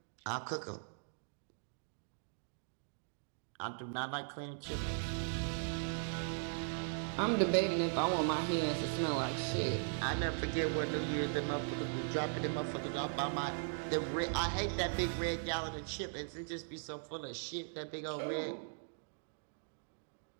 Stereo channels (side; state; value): left; silent; digital silence